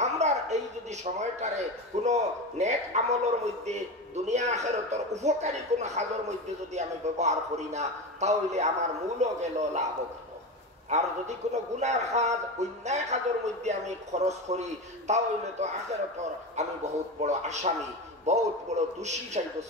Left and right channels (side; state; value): both; normal; correlation 0.22